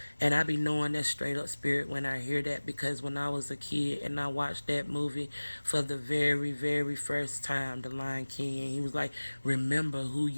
and I be knowing that straight up spirit when I hear that, because when I was a kid and I watched that movie for the very, very first time, The Lion King, and he was like, remember who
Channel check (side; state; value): both; inverted; correlation -1.00